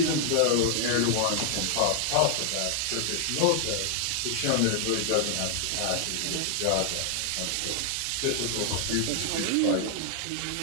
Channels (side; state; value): both; different; correlation 0.00